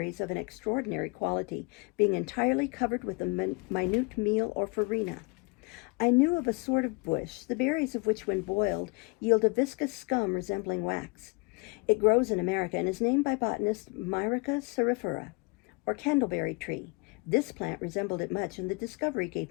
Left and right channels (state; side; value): quieter; right; 29.8 dB